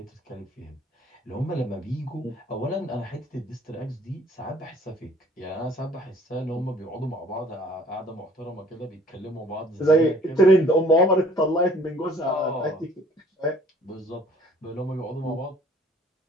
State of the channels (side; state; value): both; normal; correlation 0.55